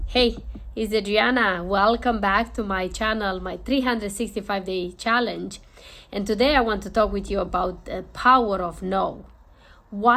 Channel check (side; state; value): both; identical; correlation 1.00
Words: Hey, it's Adriana. Welcome back to my channel, my 365-day challenge. And today I want to talk with you about the power of no.